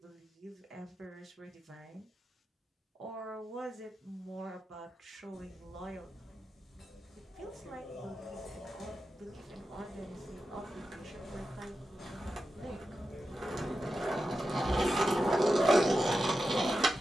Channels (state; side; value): normal; both; correlation 0.90